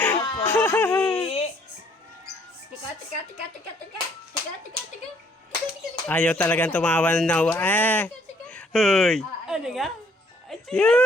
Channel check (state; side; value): normal; both; correlation 0.64